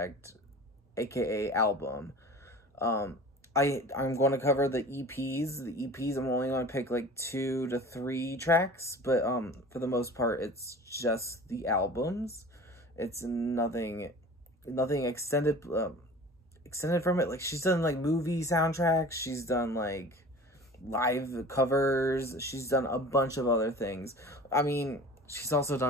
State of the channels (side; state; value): both; normal; correlation 0.40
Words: aka album. I'm going to cover the EPs. The EPs, I'm only going to pick like 2 to 3 tracks, but for the most part, it's just the albums. It's nothing extended from it. Like, she's done like movie soundtracks. She's done like live covers. She's done a bunch of other things. I mean, she's also